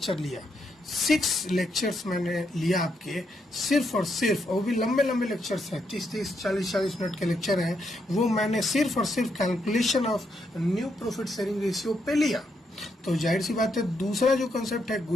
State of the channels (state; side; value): normal; both; correlation 0.79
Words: लिया, 6 लेक्चर्स मैंने लिया आपके, सिर्फ और सिर्फ, वो भी लंबे लंबे लेक्चर्स हैं, 30-30, 40-40 मिनट के लेक्चर हैं, वो मैंने सिर्फ और सिर्फ calculation of new profit sharing ratio पे लिया। तो जाहिर सी बात है, दूसरा जो कंसेप्ट है